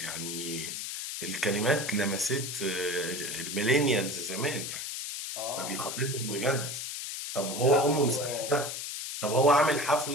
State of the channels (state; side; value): noise; left; hiss, 5 dB below the sound